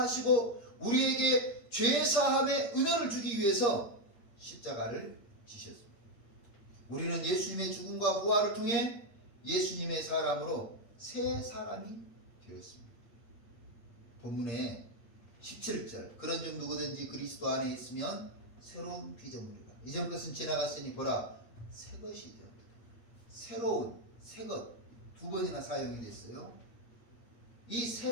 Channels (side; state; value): right; late; 8.6 ms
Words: 우리에게 죄사함의 은혜를 주기 위해서 십자가를 지셨습니다. 우리는 예수님의 죽음과 부활을 통해 예수님의 사람으로 새 사람이 되었습니다. 본문에 17절 그런 중 누구든지 그리스도 안에 있으면 새로운 피조물이라. 이전 것은 지나갔으니 보라 새 것이 되었다. 새로운 새것 두 번이나 사용이 됐어요. 이